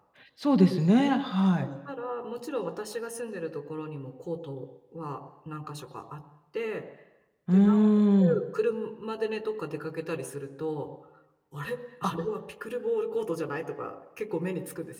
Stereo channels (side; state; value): both; identical; correlation 1.00